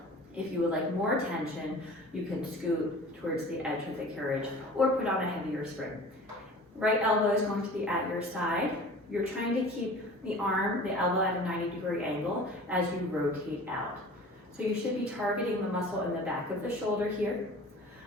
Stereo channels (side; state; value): both; normal; correlation 0.42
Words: If you would like more tension, you can scoot towards the edge of the carriage or put on a heavier spring. Right elbow is going to be at your side. You're trying to keep the arm, the elbow at a 90-degree angle as you rotate out. So you should be targeting the muscle in the back of the shoulder here.